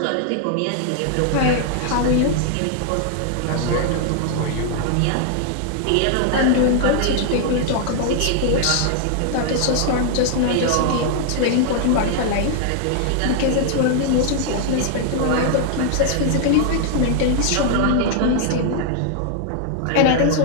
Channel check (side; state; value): both; different; correlation 0.00